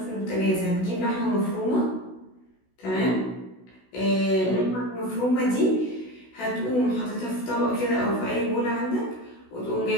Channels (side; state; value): right; late; 16 ms